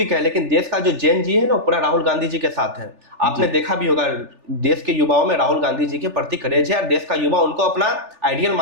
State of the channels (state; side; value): late; left; 3.4 ms